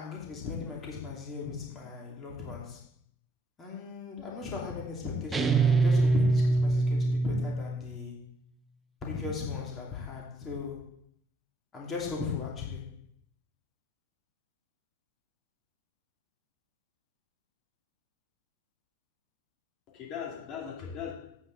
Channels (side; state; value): both; normal; correlation 0.72